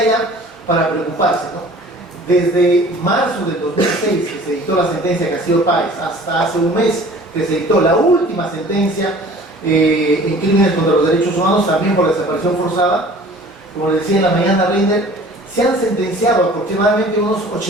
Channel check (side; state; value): both; normal; correlation 0.47